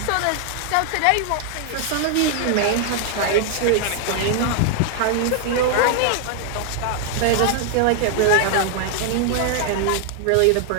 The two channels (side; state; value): both; different; correlation 0.00